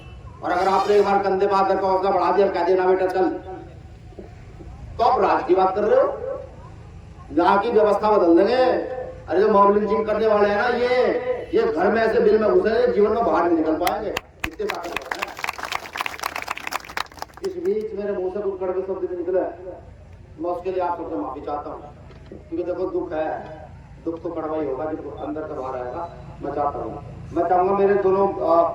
और अगर आपने एक बार कंधे पे हाथ रखा, हौसला बढ़ा दिया, कह देना बेटा चल, तो आप राज की बात कर रहे हो। यहाँ की व्यवस्था बदल देंगे। अरे जो मॉब लिंचिंग करने वाले हैं ना, ये घर में ऐसे बिल में घुसे, जीवन में बाहर नहीं निकल पाएंगे। इतने ताकत है। इस बीच मेरे मुंह से कुछ कड़वे शब्द भी निकले, मैं उसके लिए आप सबसे माफी चाहता हूँ। क्योंकि देखो दुख है, दुख तो कड़वा ही होगा, जो अंदर से बाहर आएगा। मैं चाहता हूँ, मैं चाहूंगा मेरे दोनों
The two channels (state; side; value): identical; both; correlation 1.00